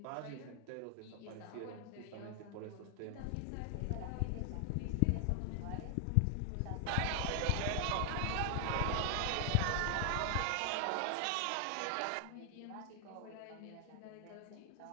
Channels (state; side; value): different; both; correlation 0.00